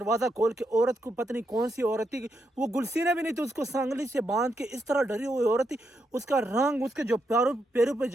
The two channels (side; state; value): both; normal; correlation 0.81